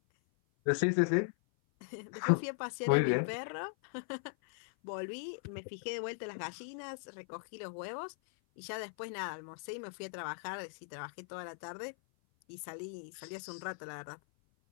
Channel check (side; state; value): right; silent; 52 dB below the other